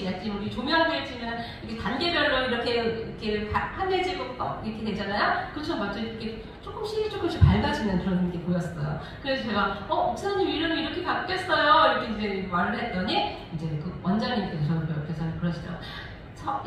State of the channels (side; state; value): both; identical; correlation 1.00